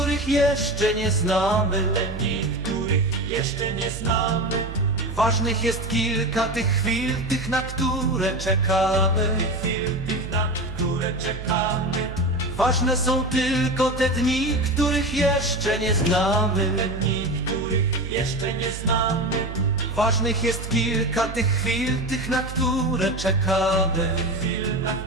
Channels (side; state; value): right; noise; hum, 9 dB below the sound